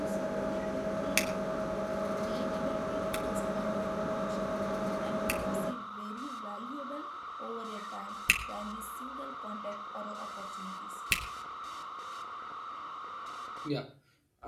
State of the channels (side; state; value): both; identical; correlation 1.00